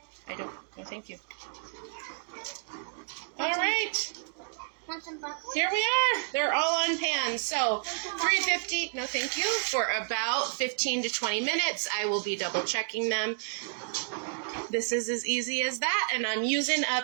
I don't. No, thank you. All right. Want some buckles? Here we are. They're all on pan. So 350, no thank you, for about 15 to 20 minutes. I will be double checking them. This is as easy as that, and I'm using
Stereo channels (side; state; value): left; silent; digital silence